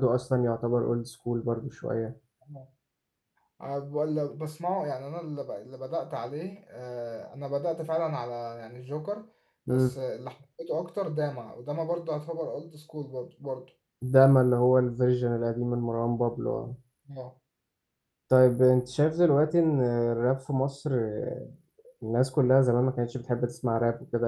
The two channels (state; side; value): identical; both; correlation 1.00